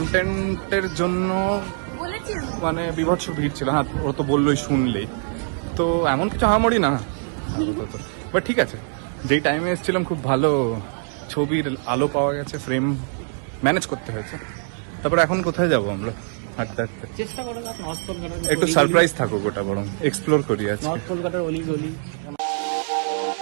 জন্য মানে বিভৎস ভিড় ছিল। হ্যাঁ, ও তো বললোই শুনলেই, তো এমন কিছু হামামড়ি না, বাট ঠিক আছে। যেই টাইমে এসেছিলাম খুব ভালো ছবির আলো পাওয়া গেছে, ফ্রেম ম্যানেজ করতে হয়েছে। তারপরে এখন কোথায় যাবো আমরা? হাঁটতে হাঁটতে চেষ্টা করো না নর্থ কলকাতার একটু সারপ্রাইজ থাকুক, ওটা বরং এক্সপ্লোর করি আজকে। নর্থ কলকাতার অলি গলি।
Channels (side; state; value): left; silent; digital silence